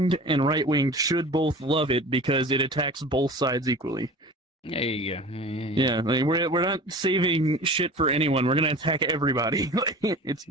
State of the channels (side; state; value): both; normal; correlation 0.39